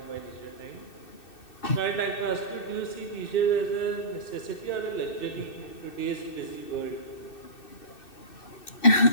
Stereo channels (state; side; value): late; right; 2.6 ms